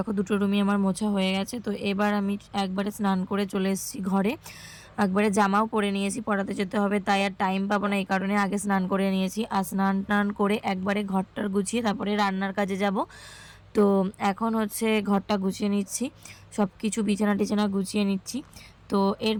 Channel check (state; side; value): identical; both; correlation 1.00